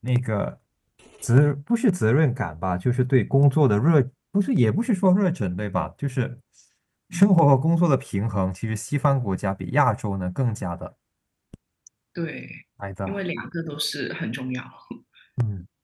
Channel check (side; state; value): both; identical; correlation 1.00